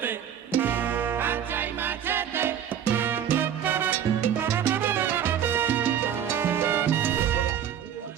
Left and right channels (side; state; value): left; quieter; 9.3 dB